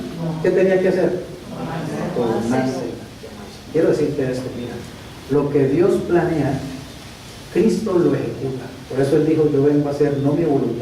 ¿Qué tenía que hacer? Tomarse. Quiero decirte esto, mira, lo que Dios planea, Cristo lo ejecuta. Por eso Él dijo, yo vengo a hacer no mi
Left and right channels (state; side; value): identical; both; correlation 1.00